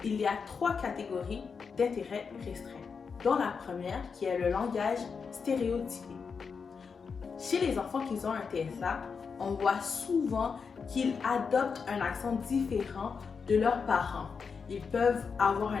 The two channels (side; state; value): right; quieter; 5.6 dB